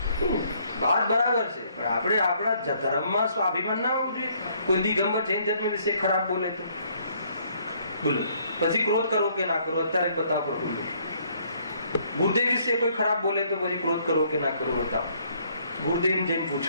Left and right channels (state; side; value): inverted; both; correlation -0.66